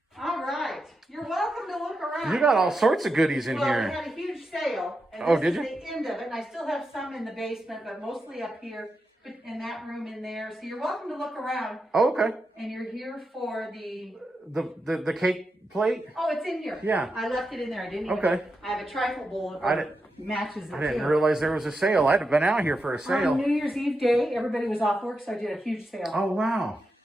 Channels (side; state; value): both; normal; correlation 0.87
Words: All right. You're welcome to look around. You got all sorts of goodies in Well, here. we had a huge sale. And Oh, this did is you? the end of it. And I still have some in the basement, but mostly up here in that room in there. So you're welcome to look around. Oh, okay. And you're here for the... The cake plate? Oh, it's in here. Yeah. I left it in there. I didn't even... Okay. I have a trifle bowl that matches it I didn't too. realize there was a sale. I'd have been out here for a sale. On New Year's Eve day, everybody was off work, so I did a huge sale. Oh, wow.